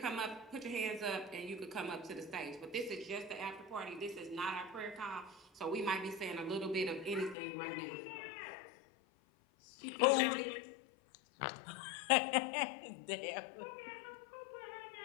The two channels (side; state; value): right; drops out; at 7.4 s